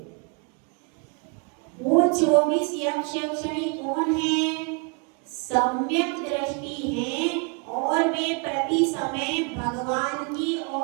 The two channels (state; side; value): quieter; left; 34.5 dB